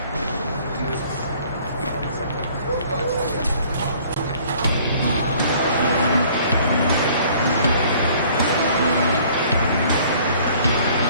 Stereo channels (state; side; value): inverted; both; correlation -0.55